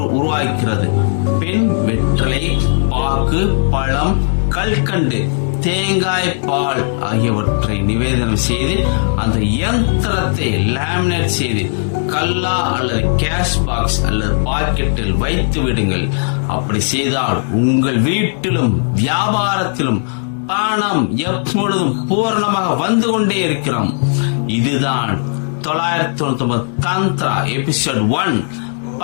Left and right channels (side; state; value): right; silent; 61 dB below the other